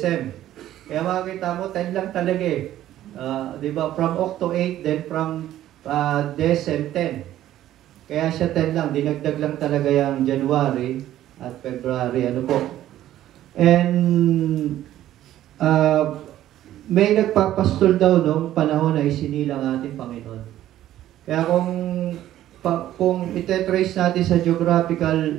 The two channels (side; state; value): left; quieter; 13.0 dB